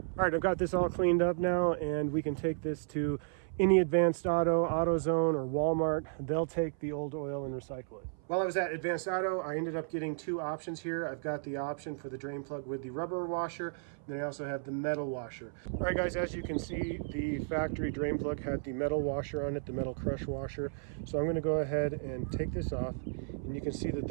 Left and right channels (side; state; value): left; silent; 55 dB below the other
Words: All right, I've got this all cleaned up now, and we can take this to any Advanced Auto, AutoZone, or Walmart. They'll take the old oil and recycle it. While I was at Advanced Auto, I ended up getting two options here. I've got the option for the drain plug with the rubber washer, and then I also have the metal washer. All right, guys, as you can see, the factory drain plug had the metal washer on it, the metal crush washer. So I'm going to go ahead and take this off, and you can see that